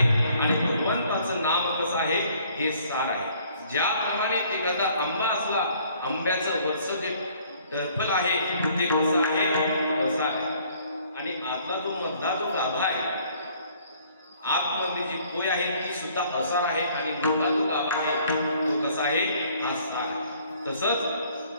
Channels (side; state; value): both; inverted; correlation -0.60